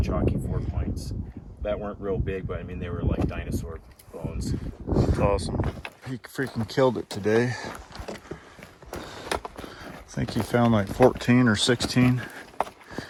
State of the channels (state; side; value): identical; both; correlation 1.00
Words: chalky 4-points that weren't real big, but I mean they were like dinosaur bones. That's awesome. He freaking killed it today. I think he found like 14 or 16.